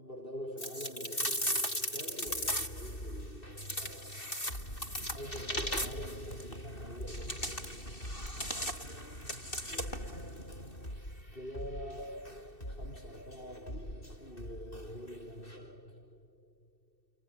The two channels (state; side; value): late; right; 2.6 ms